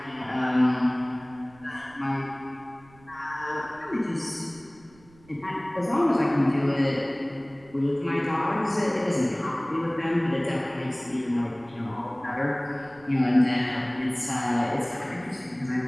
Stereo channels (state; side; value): noise; right; rumble, 26 dB below the sound